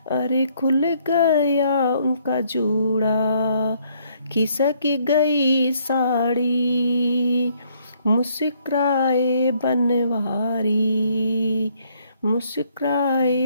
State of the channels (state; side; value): inverted; both; correlation -0.67